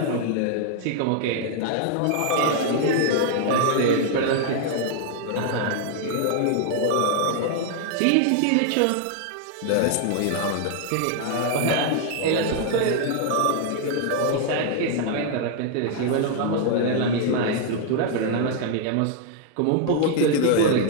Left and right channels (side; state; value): both; different; correlation 0.00